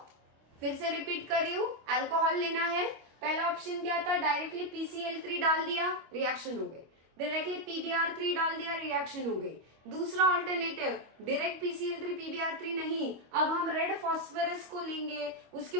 फिर से रिपीट कर रही हूं, अल्कोहल लेना है। पहला ऑप्शन क्या था, डायरेक्टली PCl3 डाल दिया, रिएक्शन हो गई। डायरेक्टली PBr3 डाल दिया, रिएक्शन हो गई। दूसरा ऑल्टरनेटिव, डायरेक्ट PCl3 PBr3 नहीं, अब हम रेड फॉस्फोरस को लेंगे, उसके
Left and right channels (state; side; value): late; left; 25 ms